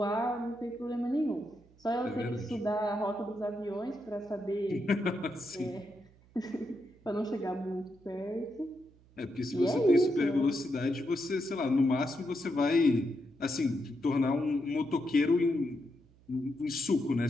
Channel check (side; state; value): right; noise; hum, 28 dB below the sound